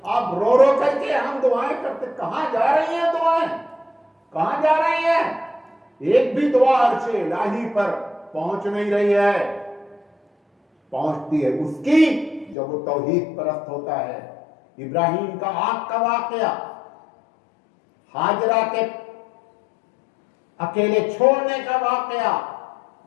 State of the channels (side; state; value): right; drops out; at 12.6 s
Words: آپ رو رو کر کے ہم دعائیں کرتے، کہاں جا رہی ہیں دعائیں؟ کہاں جا رہی ہیں؟ ایک بھی دعا عرش الہی پر پہنچ نہیں رہی ہے. پہنچتی ہے اس کی جب وہ توحید پرست ہوتا ہے. ابراہیم کا آگ کا واقعہ، ہاجرہ کے اکیلے چھوڑنے کا واقعہ،